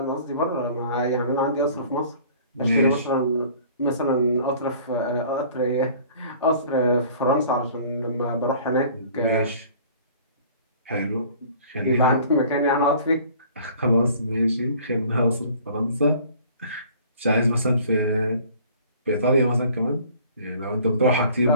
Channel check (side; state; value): both; inverted; correlation -0.51